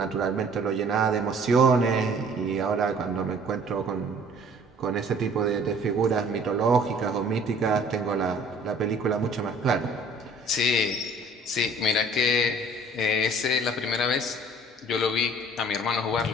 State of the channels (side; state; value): both; normal; correlation 0.53